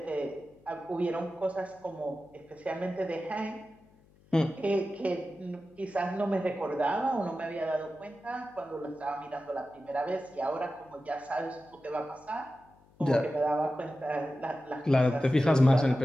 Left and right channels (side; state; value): left; noise; hum, 29 dB below the sound